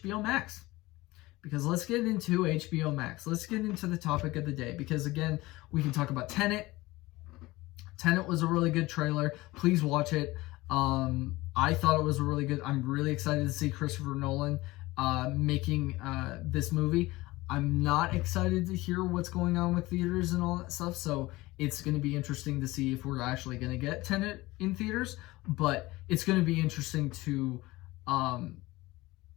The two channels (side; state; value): right; quieter; 19.9 dB